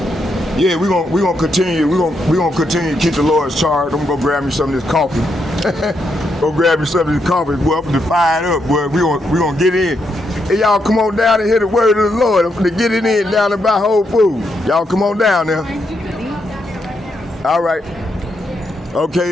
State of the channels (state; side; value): normal; both; correlation 0.80